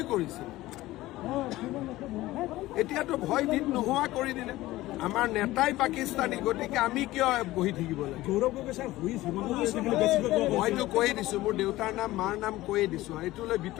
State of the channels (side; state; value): right; quieter; 17.3 dB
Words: কৰিছিল, এতিয়াতো ভয় ভীত নোহোৱা কৰি দিলে। আমাৰ নেতাই পাকিস্তানী, গতিকে আমি কিয় বহি থাকিব লাগে? মইতো কৈয়ে দিছোঁ, মোৰ দেউতাৰ নাম মাৰ নাম কৈয়ে দিছোঁ, এইটো লৈ